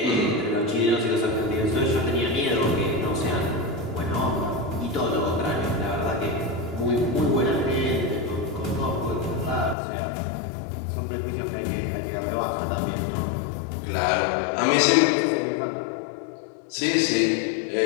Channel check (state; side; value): drops out; right; at 9.8 s